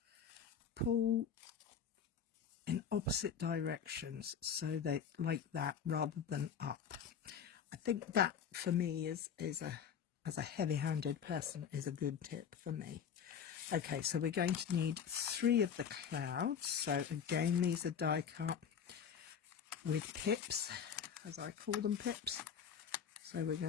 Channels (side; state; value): right; quieter; 7.6 dB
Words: pull in opposite directions, so they like that rather than up. I think that for me is as a heavy-handed person is a good tip for me. Okay, so we're going to need 3 of the clouds. So again, these are die cut with pips, as I call them, pips. So we're